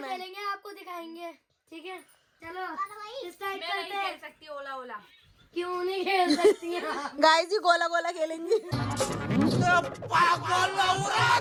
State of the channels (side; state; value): both; identical; correlation 1.00